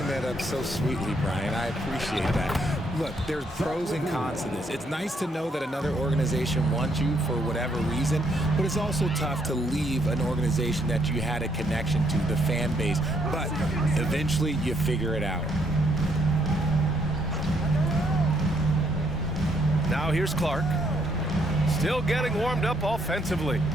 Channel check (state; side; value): normal; both; correlation 0.72